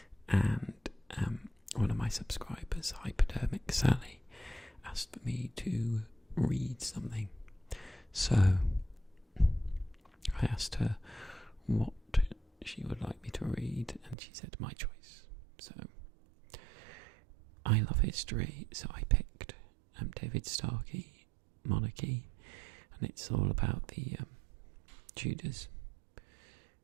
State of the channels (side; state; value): left; drops out; at 14.2 s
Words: and one of my subscribers, Hypodermic Sally, asked for me to read something. So I asked her what she would like me to read and she said my choice. So I love history, so I picked David Starkey, Monarchy, and it's all about the Tudors